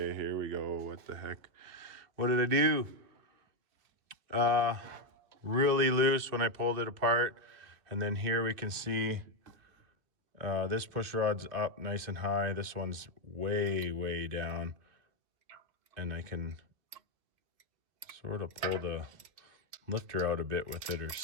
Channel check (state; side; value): late; left; 2.7 ms